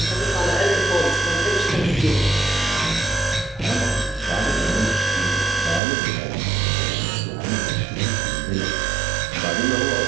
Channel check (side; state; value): left; drops out; at 5.8 s